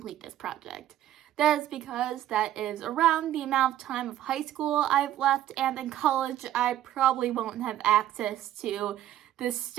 this project. That is because that is around the amount of time of high school I've left, and in college I probably won't have access to the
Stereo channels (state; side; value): quieter; left; 12.5 dB